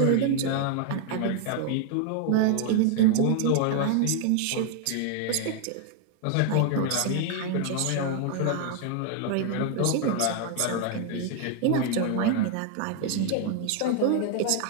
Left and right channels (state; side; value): different; both; correlation 0.00